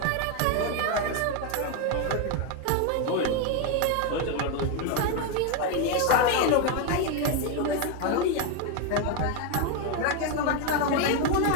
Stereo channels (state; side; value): different; both; correlation 0.02